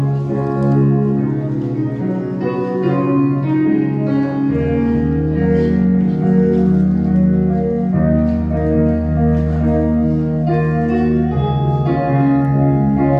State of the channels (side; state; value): both; identical; correlation 1.00